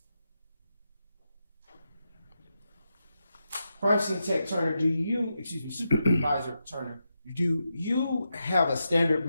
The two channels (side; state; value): both; inverted; correlation -0.86